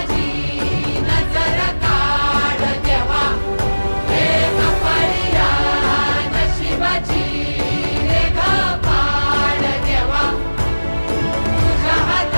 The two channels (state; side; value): inverted; both; correlation -1.00